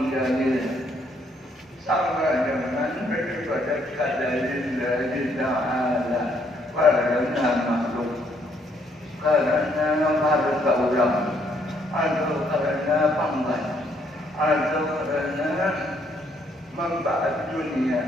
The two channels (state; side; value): normal; both; correlation 0.70